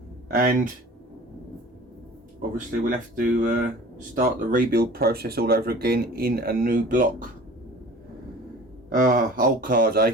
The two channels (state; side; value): normal; both; correlation 0.43